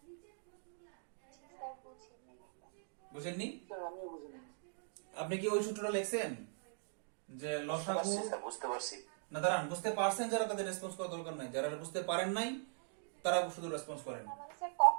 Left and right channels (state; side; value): silent; left; digital silence